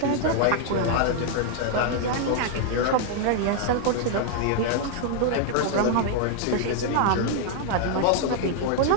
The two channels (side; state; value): both; different; correlation 0.00